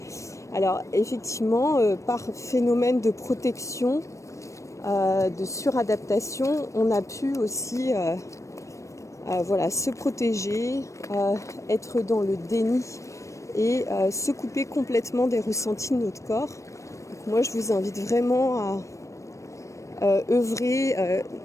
». Alors, effectivement, par phénomène de protection, de suradaptation, on a pu aussi se protéger, être dans le déni et se couper complètement des ressentis de notre corps. Donc, moi, je vous invite vraiment à œuvrer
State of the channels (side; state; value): right; late; 0.15 ms